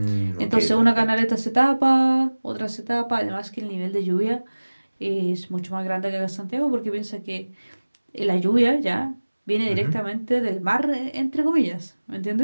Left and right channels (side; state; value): both; inverted; correlation -1.00